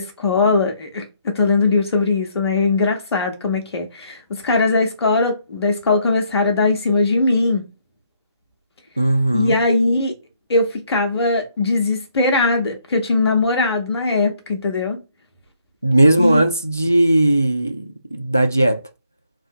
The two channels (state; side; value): inverted; both; correlation -0.71